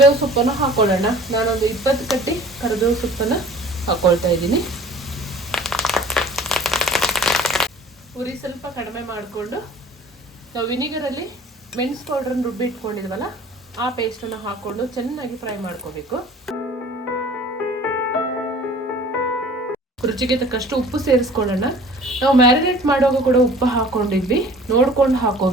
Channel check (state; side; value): normal; both; correlation 0.47